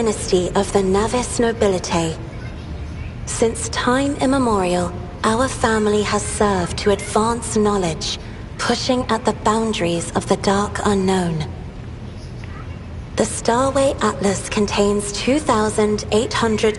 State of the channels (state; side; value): identical; both; correlation 1.00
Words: of the Navis nobility. Since time immemorial, our family has served to advance knowledge, pushing at the boundaries of the dark unknown. The Starway Atlas contains